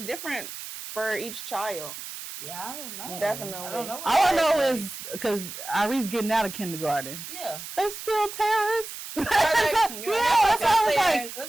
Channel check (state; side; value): noise; right; hiss, 10 dB below the sound